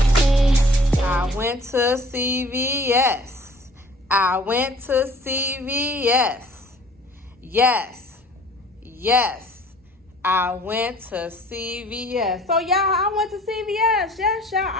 I went to CVS. I went to CVS. Yes. Yes. I went to CVS. So, y'all, I went to CVS. Yes, y'all.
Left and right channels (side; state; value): both; normal; correlation 0.52